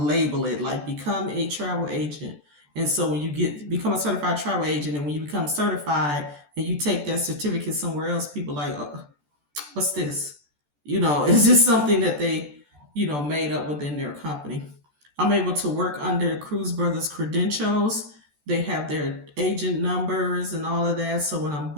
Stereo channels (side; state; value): left; late; 14 ms